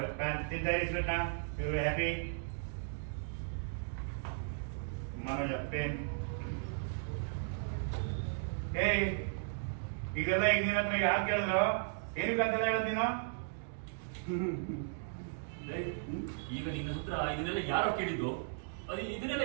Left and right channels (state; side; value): silent; left; digital silence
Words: ತಿಂತಾರೆ ಸ್ವೀಟ್ ನ. ಇವರು ಹ್ಯಾಪಿ. ಮನೋಜ ಪೇನ್. ಏಯ್ ಇದೆಲ್ಲ ಈಗ ನಿನ್ನ ಹತ್ರ ಯಾರು ಕೇಳಿದ್ರು? ಏನಕ್ಕಂತೆಲ್ಲ ಹೇಳೋದು ನೀನು? ಈಗ ನಿನ್ನ ಹತ್ರ ಇದನ್ನೆಲ್ಲ ಯಾರೋ ಕೇಳಿದ್ದು? ಅದು ಇದನ್ನೆಲ್ಲ